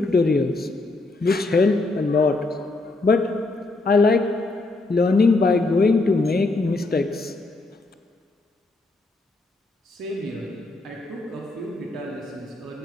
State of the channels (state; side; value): quieter; right; 3.2 dB